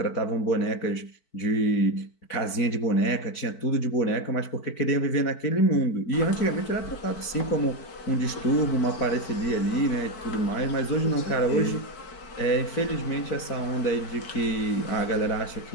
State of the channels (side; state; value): right; late; 4.5 ms